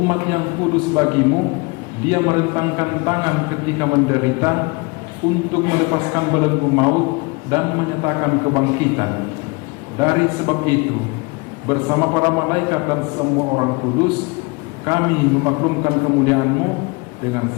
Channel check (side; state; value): right; quieter; 27.6 dB